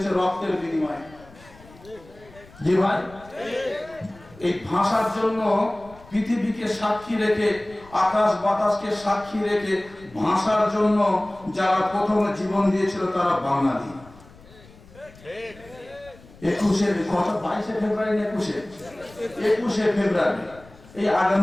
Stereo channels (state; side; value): noise; left; rumble, 23 dB below the sound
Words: রক্তের বিনিময়ে। জি ভাই, এই ভাষার জন্য পৃথিবীকে সাক্ষী রেখে, আকাশ বাতাসকে সাক্ষী রেখে ভাষার জন্য যারা প্রথমে জীবন দিয়েছিল তারা বাঙালি। 22শে ফেব্রুয়ারি, 21শে ফেব্রুয়ারি এই